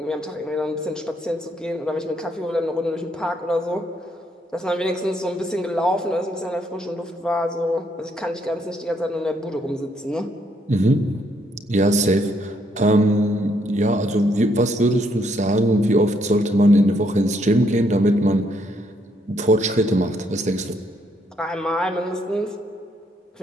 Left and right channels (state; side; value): normal; both; correlation 0.72